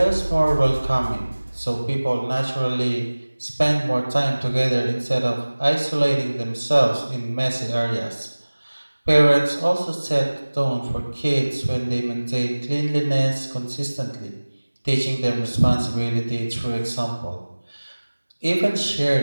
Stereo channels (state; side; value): inverted; both; correlation -1.00